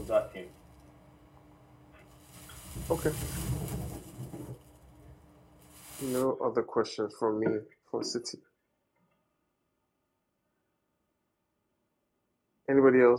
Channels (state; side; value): identical; both; correlation 1.00